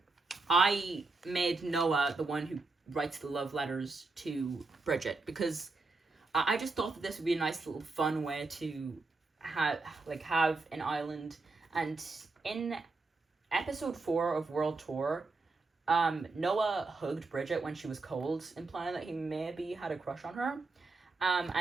I made Noah the one who writes the love letters to Bridget because I just thought that this would be a nice little fun way to have an island. And in episode 4 of World Tour, Noah hugged Bridget when she was cold, implying that he maybe had a crush on her.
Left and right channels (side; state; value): left; quieter; 3.7 dB